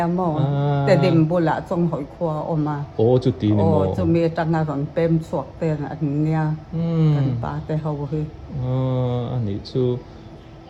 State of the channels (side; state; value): both; identical; correlation 1.00